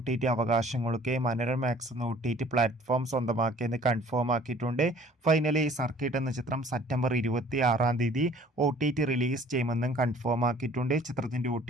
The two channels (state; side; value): normal; both; correlation 0.52